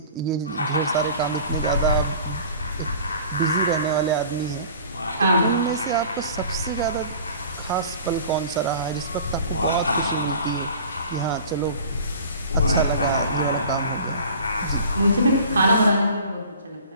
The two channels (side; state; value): both; inverted; correlation -0.44